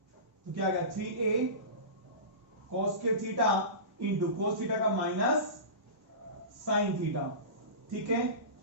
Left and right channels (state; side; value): late; left; 1.2 ms